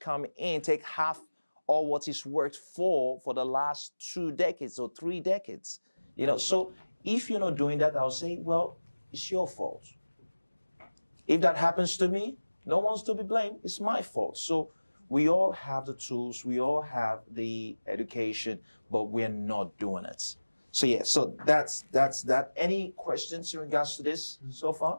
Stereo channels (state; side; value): inverted; both; correlation -1.00